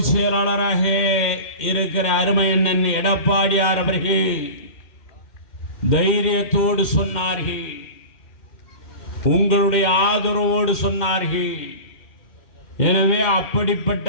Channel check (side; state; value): right; late; 2.1 ms